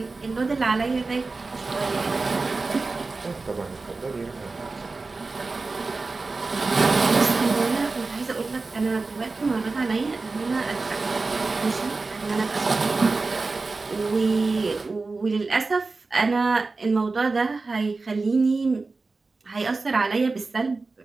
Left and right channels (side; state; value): left; quieter; 3.8 dB